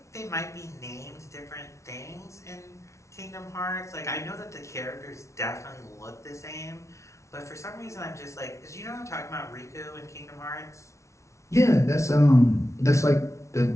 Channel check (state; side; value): late; right; 0.14 ms